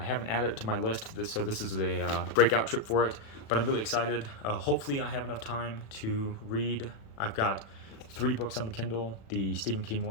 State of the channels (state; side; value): late; right; 36 ms